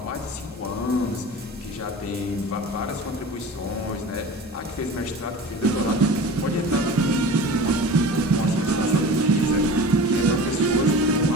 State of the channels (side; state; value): both; normal; correlation 0.36